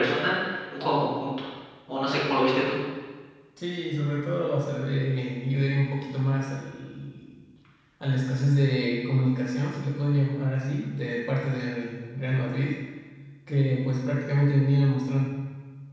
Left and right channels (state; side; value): identical; both; correlation 1.00